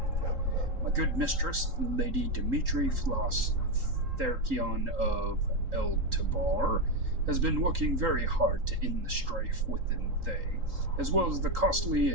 My good mistress, Lady Dimitri Floss Therkion of El-Tabar, has been working very hard to end the strife within Thay, as well as the costly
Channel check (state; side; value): late; left; 3.8 ms